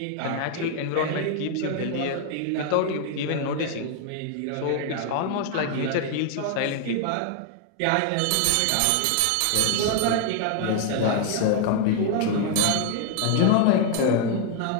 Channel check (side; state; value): both; different; correlation 0.00